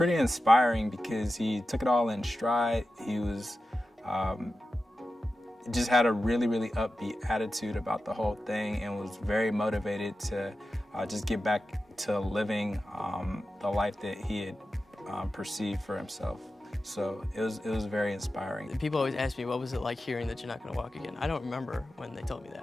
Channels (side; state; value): both; normal; correlation 0.93